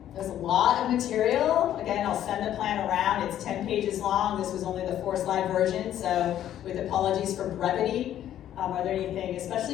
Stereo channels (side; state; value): right; quieter; 11.4 dB